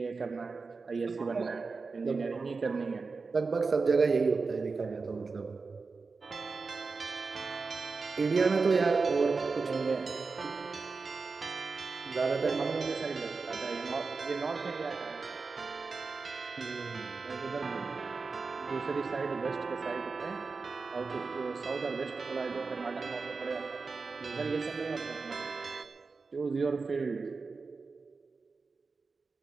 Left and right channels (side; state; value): left; quieter; 4.4 dB